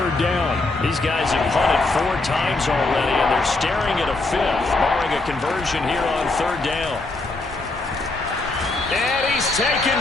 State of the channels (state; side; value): quieter; right; 3.2 dB